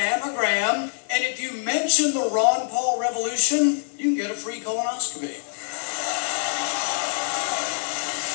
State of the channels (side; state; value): right; silent; digital silence